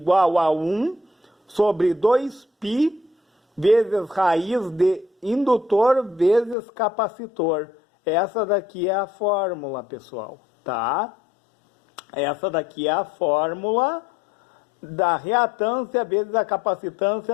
a 1 sobre 2π vezes raiz de indutor vezes capacitor. Essa daqui é a fórmula, pessoal, tá? Essa daqui é a fórmula da reatância vezes a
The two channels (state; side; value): drops out; right; at 6.6 s